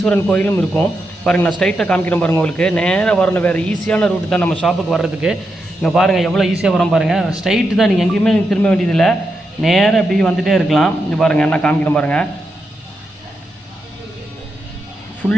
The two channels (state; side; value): normal; both; correlation 0.85